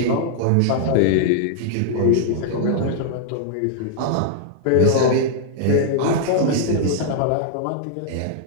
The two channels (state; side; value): different; both; correlation -0.01